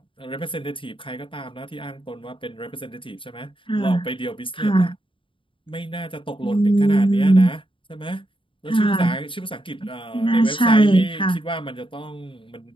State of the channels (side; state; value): right; late; 0.25 ms